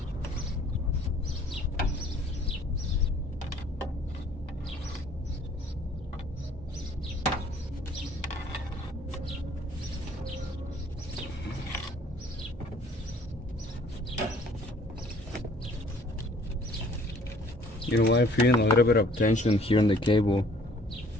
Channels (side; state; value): both; normal; correlation 0.56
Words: You know what, I'm feeling a little bit of tension here on the cable.